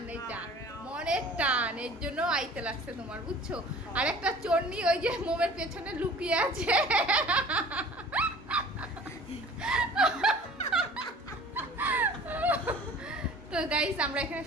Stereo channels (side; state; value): both; normal; correlation 0.46